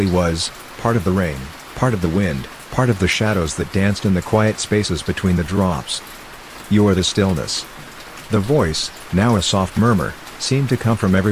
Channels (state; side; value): identical; both; correlation 1.00